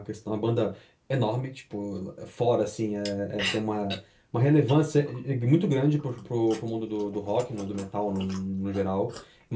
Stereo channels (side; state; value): both; identical; correlation 1.00